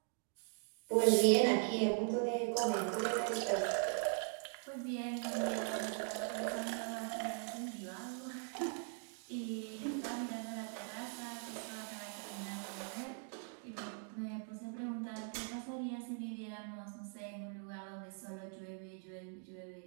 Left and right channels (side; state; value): left; silent; 51 dB below the other